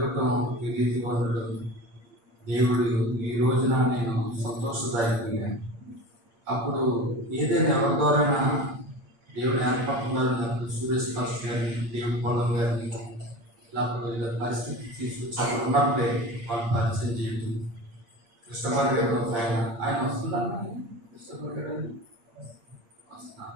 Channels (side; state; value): left; late; 8.6 ms